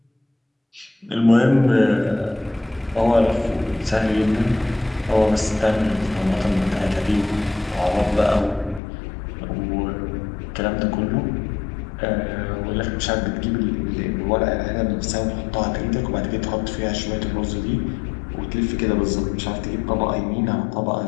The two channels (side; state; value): right; drops out; at 8.8 s